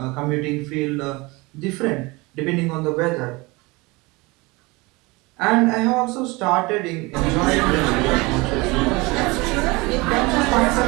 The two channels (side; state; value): left; quieter; 24.2 dB